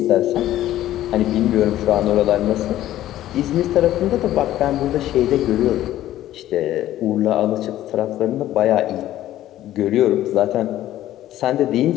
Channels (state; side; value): quieter; right; 13.5 dB